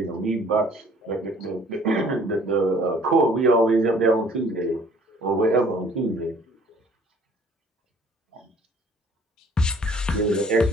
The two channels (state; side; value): normal; both; correlation 0.56